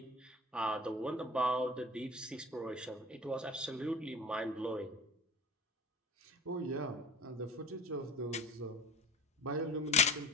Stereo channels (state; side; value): normal; both; correlation 0.39